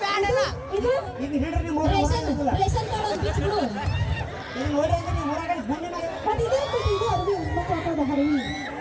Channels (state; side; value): identical; both; correlation 1.00